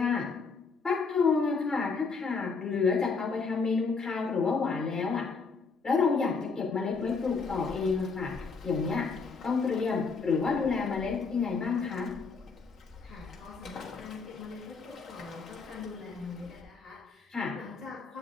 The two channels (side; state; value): right; quieter; 4.7 dB